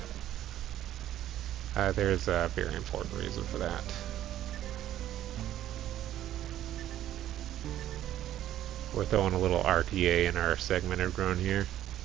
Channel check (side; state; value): left; quieter; 12.4 dB